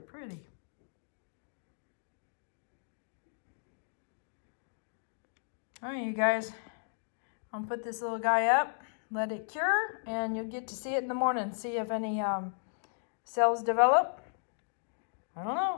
All right, you guys, I'm gonna put this little guy up, let it cure, and you'll get to see it in the morning, see if any cells develop. I don't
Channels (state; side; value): silent; right; digital silence